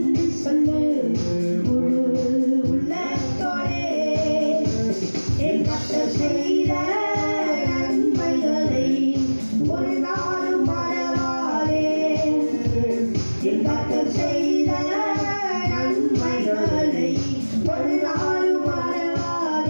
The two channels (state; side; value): inverted; both; correlation -1.00